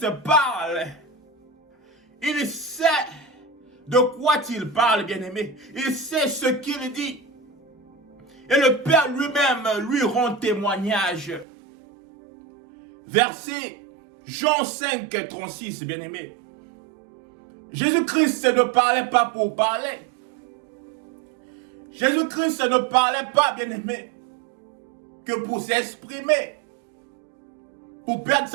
parle, il sait de quoi il parle, bien-aimé. Il sait ce qu'il dit. Et le Père lui-même lui rend témoignage. Verset Jean 5, 36, bien-aimé. Jésus-Christ ne parlait pas pour parler. Jésus-Christ ne parlait pas, bien-aimé, que pour s'exprimer, pour perdre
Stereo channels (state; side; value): drops out; left; at 11.5 s